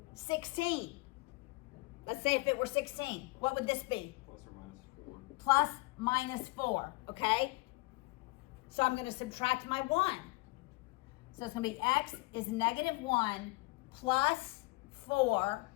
16, let's say if it were 16, what would this be? Plus or minus 4. Plus minus 4, okay? So I'm going to subtract my 1. So it's going to be x is negative 1 plus 4,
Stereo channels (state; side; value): quieter; right; 24.5 dB